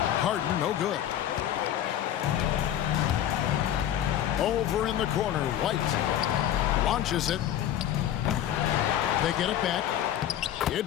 Harden, no good. Over in the corner, White launches it. They get it back. It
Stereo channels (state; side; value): quieter; right; 11.2 dB